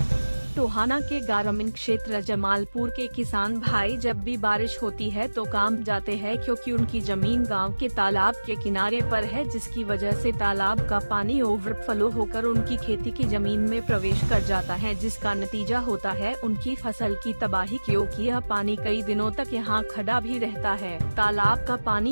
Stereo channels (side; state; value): both; inverted; correlation -1.00